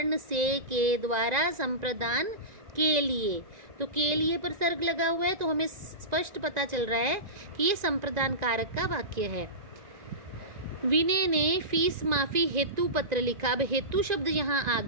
से के द्वारा संप्रदान के लिए, तो के लिए परसर्ग लगा हुआ है, तो हमें स्पष्ट पता चल रहा है कि ये संप्रदान कारक का वाक्य है। विनय ने फीस माफी हेतु पत्र लिखा। अब हेतु शब्द यहाँ आ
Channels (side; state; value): left; late; 1.9 ms